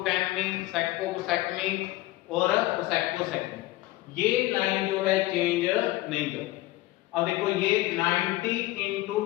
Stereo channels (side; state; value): right; quieter; 17.7 dB